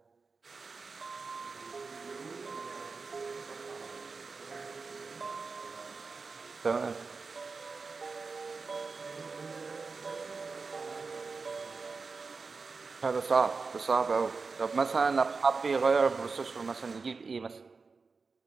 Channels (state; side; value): quieter; left; 4.5 dB